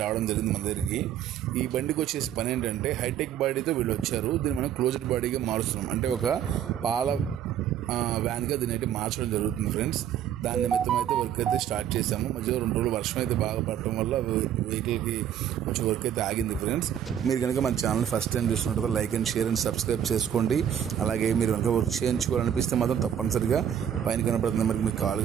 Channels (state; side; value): quieter; left; 9.7 dB